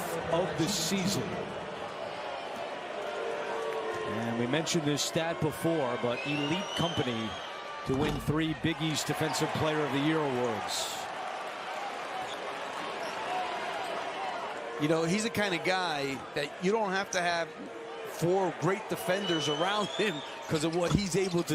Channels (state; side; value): identical; both; correlation 1.00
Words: of the season. And we mentioned this stat before, but elite company to win 3 Big East Defensive Player of the Year awards. You know, he's the kind of guy that you don't have to have 4 great defenders around him because of what he's able